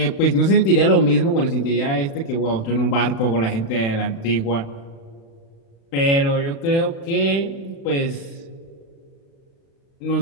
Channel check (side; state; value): right; late; 36 ms